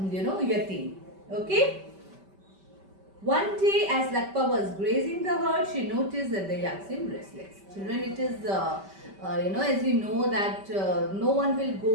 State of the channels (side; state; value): left; late; 5.1 ms